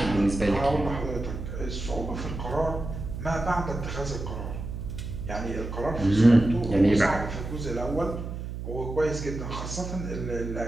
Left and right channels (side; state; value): right; noise; hum, 7 dB below the sound